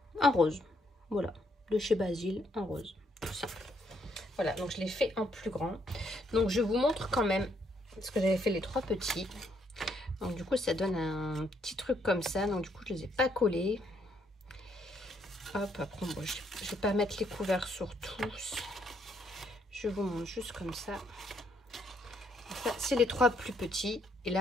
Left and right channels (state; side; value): normal; both; correlation 0.72